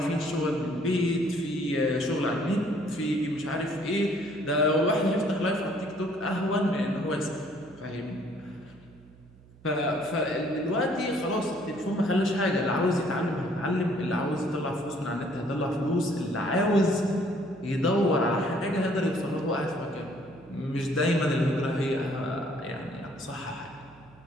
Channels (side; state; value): right; noise; hum, 25 dB below the sound